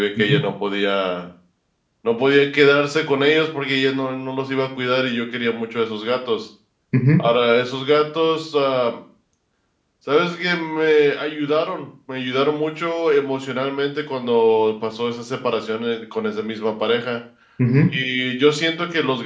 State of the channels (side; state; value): both; identical; correlation 1.00